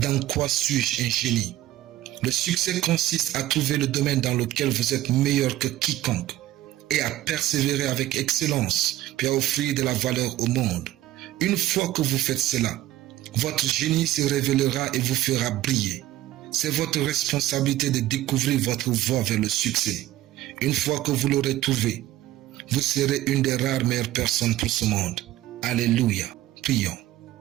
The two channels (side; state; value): left; quieter; 14.8 dB